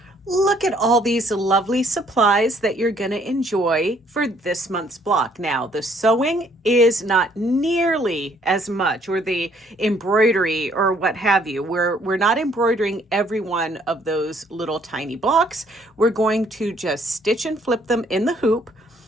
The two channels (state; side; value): normal; both; correlation 0.64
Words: Look at all these lovely supplies that you're going to enjoy for this month's block. Now, the sewing is not nearly as much, or the embroidery or what have you. We're not embroidering every one of those little tiny blocks. We're going to just stitch and flip them in the hoop,